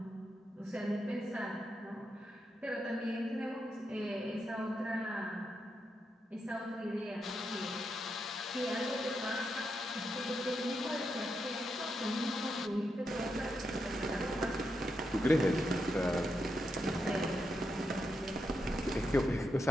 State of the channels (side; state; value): both; normal; correlation 0.84